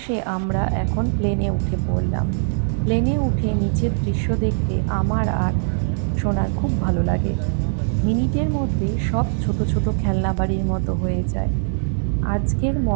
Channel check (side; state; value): left; silent; digital silence